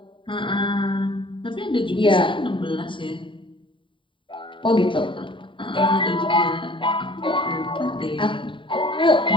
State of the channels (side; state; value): right; late; 0.24 ms